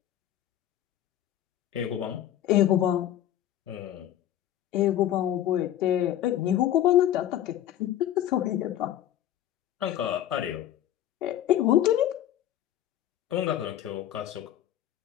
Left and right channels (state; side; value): quieter; right; 11.9 dB